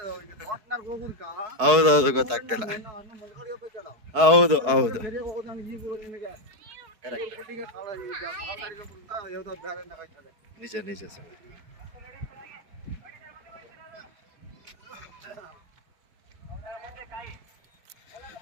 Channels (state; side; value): late; left; 4.6 ms